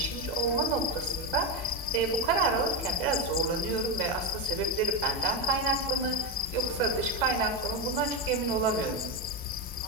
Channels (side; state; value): both; normal; correlation 0.12